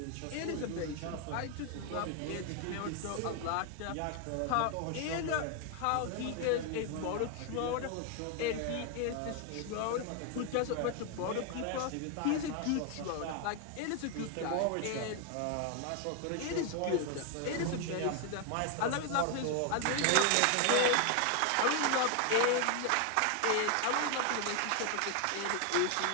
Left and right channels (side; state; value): both; different; correlation 0.01